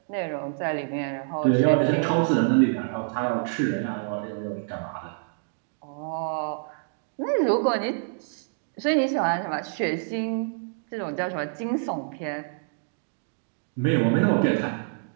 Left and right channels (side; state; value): left; silent; digital silence